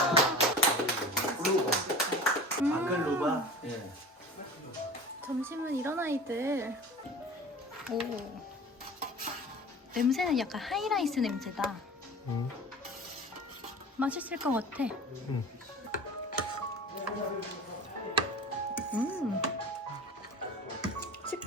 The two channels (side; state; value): both; normal; correlation 0.37